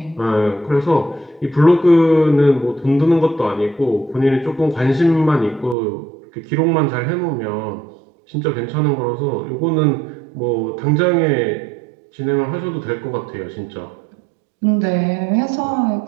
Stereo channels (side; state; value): left; drops out; at 5.8 s